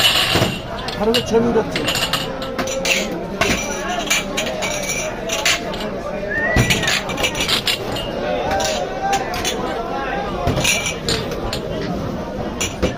আরো ছবি উঠাচ্ছে।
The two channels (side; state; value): both; identical; correlation 1.00